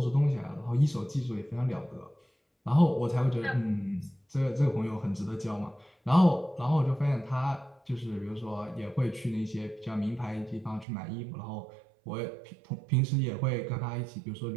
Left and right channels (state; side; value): drops out; left; at 10.9 s